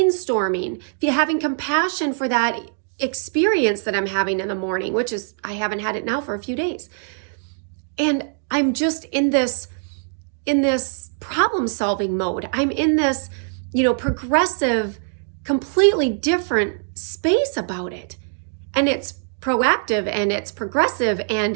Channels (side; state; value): left; silent; digital silence